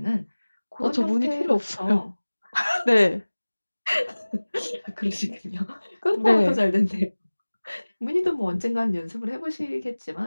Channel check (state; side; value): inverted; both; correlation -1.00